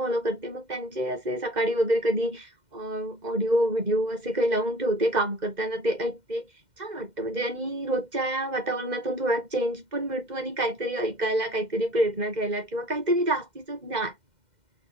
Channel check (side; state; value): left; late; 2.1 ms